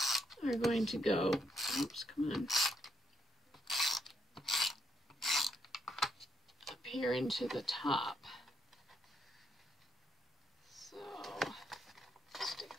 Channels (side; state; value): both; normal; correlation 0.76